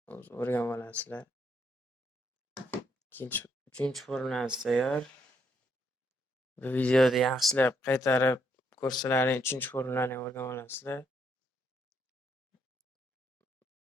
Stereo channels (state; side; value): normal; both; correlation 0.74